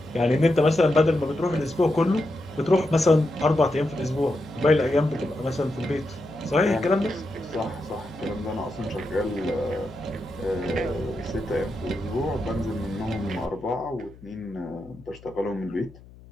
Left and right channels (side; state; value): left; noise; hum, 22 dB below the sound